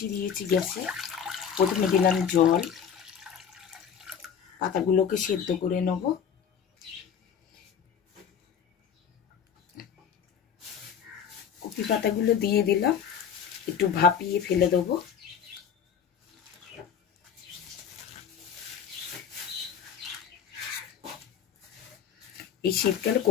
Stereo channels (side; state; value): right; quieter; 7.7 dB